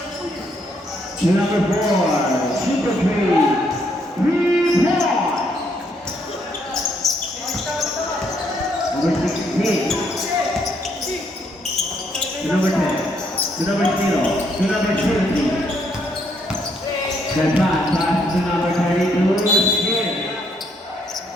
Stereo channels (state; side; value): normal; both; correlation 0.72